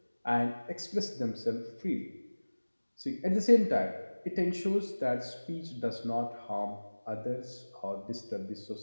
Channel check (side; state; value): both; inverted; correlation -1.00